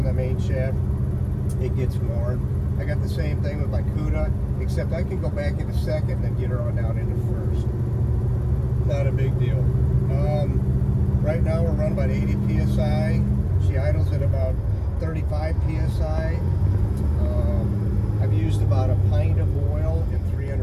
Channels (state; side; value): identical; both; correlation 1.00